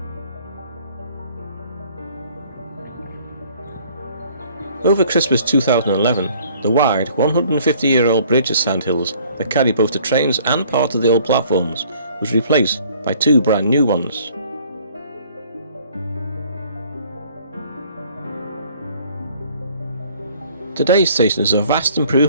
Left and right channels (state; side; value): inverted; both; correlation -0.57